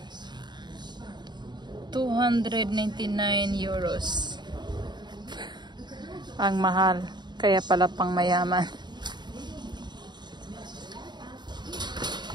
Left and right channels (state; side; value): late; left; 0.21 ms